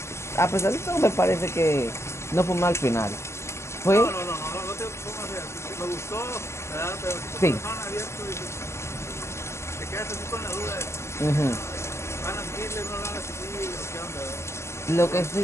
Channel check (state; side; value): late; right; 0.13 ms